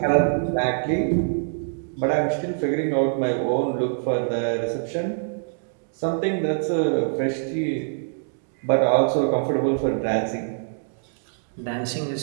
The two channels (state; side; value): silent; left; digital silence